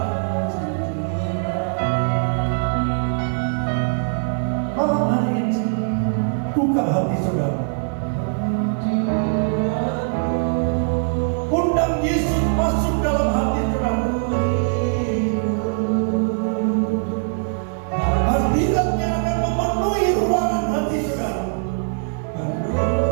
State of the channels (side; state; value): left; silent; digital silence